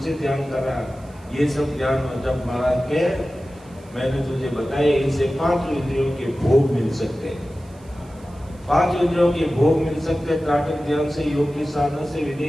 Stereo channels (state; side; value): noise; right; hiss, 29 dB below the sound